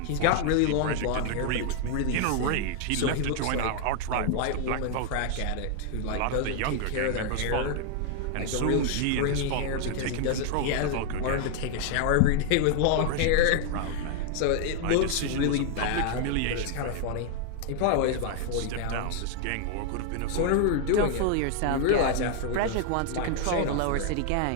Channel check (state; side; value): different; both; correlation 0.00